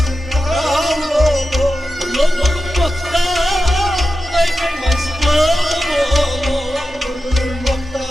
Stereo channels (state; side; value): normal; both; correlation 0.92